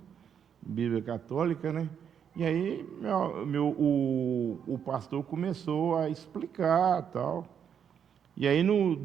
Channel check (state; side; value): quieter; left; 8.1 dB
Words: Bíblia católica, né? E aí o pastor começou a explicar tal. E aí no